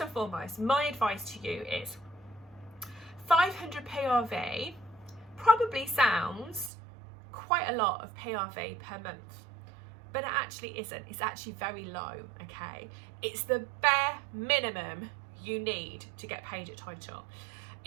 foremost, my advice to you is 500 PRV probably sounds quite a lot of PRV per month, but it actually isn't. It's actually very low, okay? It's the bare minimum you need to get paid at title.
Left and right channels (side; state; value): left; drops out; at 6.7 s